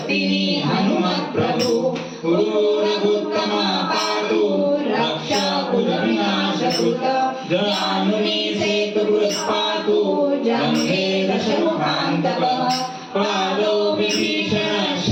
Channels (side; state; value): both; identical; correlation 1.00